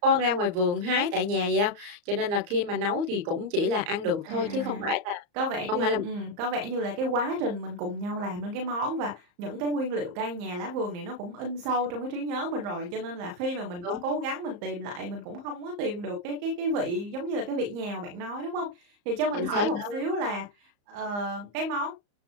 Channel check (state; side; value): late; left; 34 ms